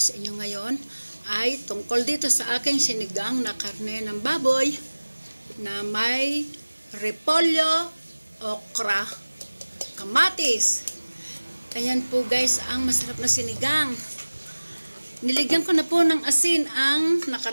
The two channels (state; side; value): inverted; both; correlation -1.00